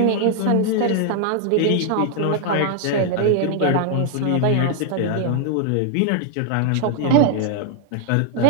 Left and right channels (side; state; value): both; different; correlation 0.00